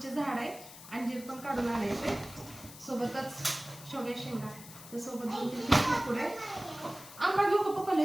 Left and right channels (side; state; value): left; noise; hiss, 16 dB below the sound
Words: झाड आहे. अंजीर पण काढून आणायचे, सोबतच शेवग्या शेंगा, तर सोबत 2-3 पुढे आंबा घेऊ का? पप्पाला